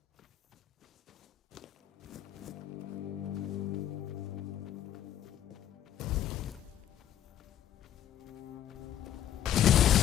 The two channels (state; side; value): quieter; right; 11.1 dB